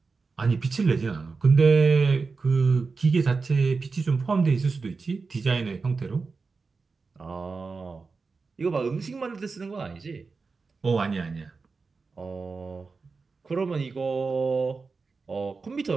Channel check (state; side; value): quieter; left; 4.4 dB